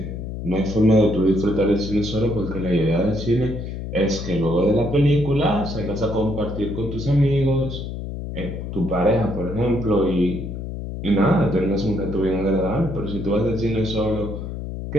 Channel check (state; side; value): noise; left; hum, 7 dB below the sound